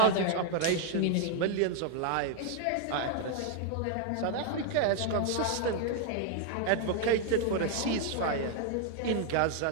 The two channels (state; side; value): different; both; correlation 0.00